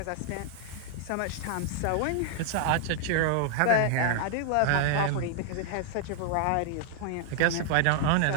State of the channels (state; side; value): different; both; correlation -0.01